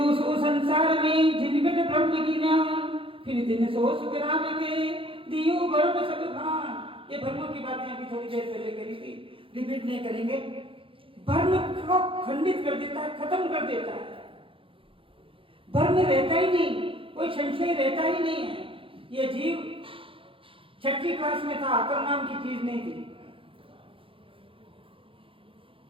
सो संसार में जिनगट ब्रह्म की नाम, फिर दिन सो सुख राम के दियो गर्भ सब भान। ये भ्रमों की बातें अभी थोड़ी देर पहले करी थी, रिपीट नहीं करेंगे। भ्रम को खंडित कर देता है, खत्म कर देता है। भ्रम रहता ही नहीं, कोई संशय रहता ही नहीं है। ये जीव 6ठी क्लास में था, अकल नाम की चीज नहीं थी।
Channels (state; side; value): late; left; 0.26 ms